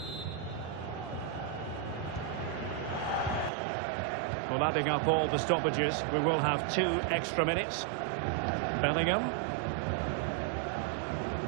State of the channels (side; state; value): left; drops out; at 3.5 s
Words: Well, adding up all the stoppages, we will have 2 extra minutes. Bellingham.